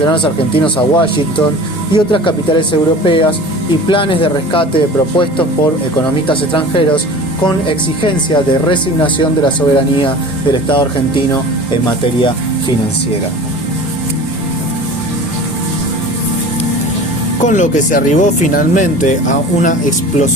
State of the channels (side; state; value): both; normal; correlation 0.39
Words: argentinos a Washington y otras capitales europeas y planes de rescate propuestos por economistas extranjeros con exigencia de resignación de la soberanía del Estado argentino en materia financiera. Con lo que se arribó finalmente a una